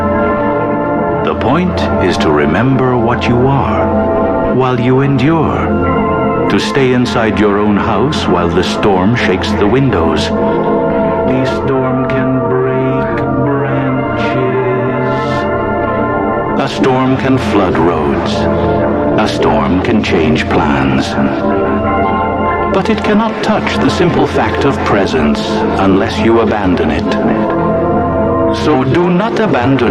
The point is to remember what you are while you endure. To stay inside your own house while the storm shakes the windows. The storm can break branches. A storm can flood roads. A storm can change plans. But it cannot touch the simple fact of presence unless you abandon it. So do not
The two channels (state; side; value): identical; both; correlation 1.00